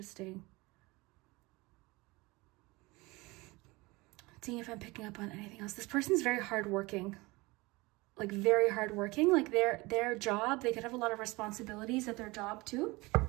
Seeing if I'm picking up on anything else. This person's very hardworking. Like, very hardworking. Like, their job, they could have a lot of responsibilities at their job too.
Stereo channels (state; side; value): quieter; left; 23.2 dB